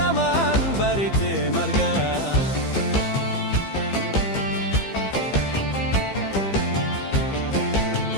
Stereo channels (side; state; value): right; late; 15 ms